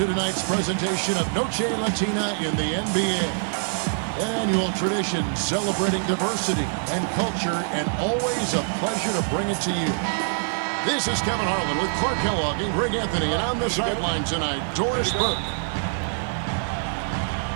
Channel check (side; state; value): left; silent; digital silence